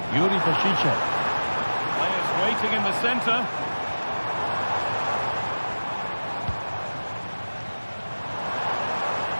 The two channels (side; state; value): both; inverted; correlation -1.00